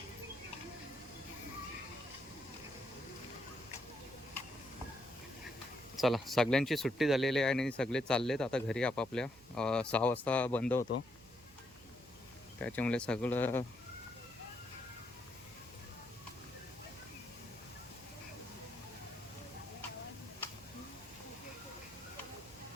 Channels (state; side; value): noise; right; hum, 24 dB below the sound